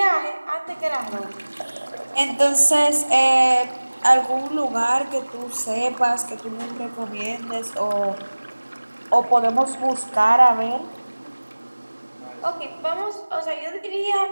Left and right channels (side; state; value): both; inverted; correlation -1.00